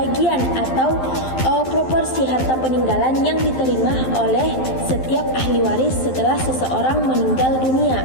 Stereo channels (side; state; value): right; late; 12 ms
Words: atau proporsi harta peninggalan yang diterima oleh setiap ahli waris setelah seseorang meninggal dunia.